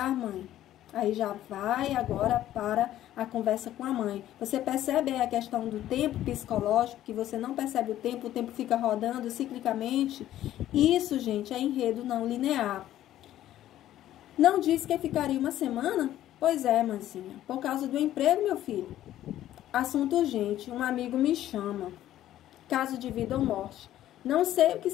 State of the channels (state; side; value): quieter; right; 12.9 dB